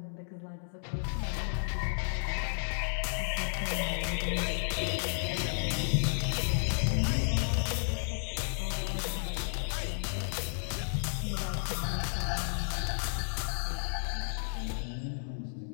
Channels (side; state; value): right; silent; digital silence